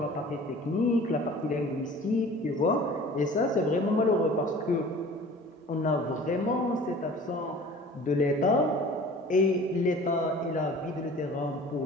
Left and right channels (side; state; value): both; normal; correlation 0.45